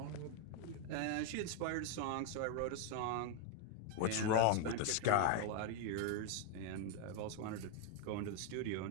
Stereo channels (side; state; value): both; different; correlation 0.00